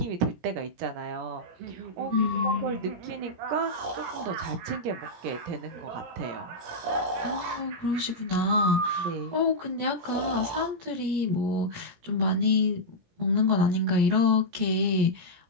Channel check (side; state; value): left; late; 17 ms